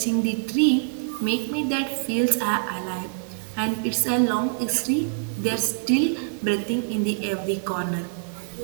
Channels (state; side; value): silent; left; 57 dB below the other